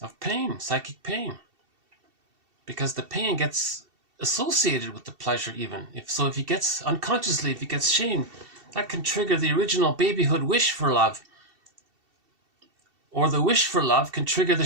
of pain, psychic pain. Because the pain gets associated with the pleasure even. If he gets shame, that can trigger the original babyhood wish for love. Or the wish for love can trigger the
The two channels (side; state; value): left; late; 2.7 ms